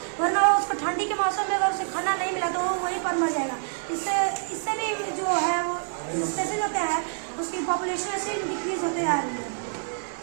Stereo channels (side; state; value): left; silent; digital silence